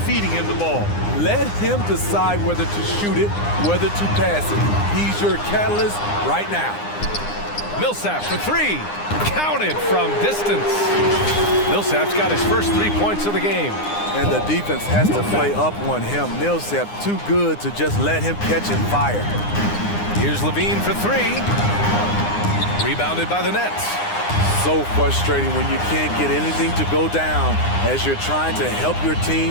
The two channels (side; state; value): right; late; 9.8 ms